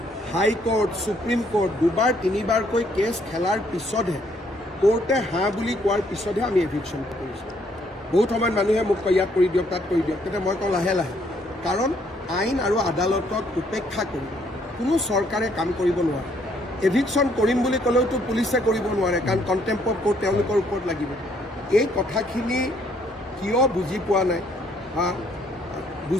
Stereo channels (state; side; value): normal; both; correlation 0.67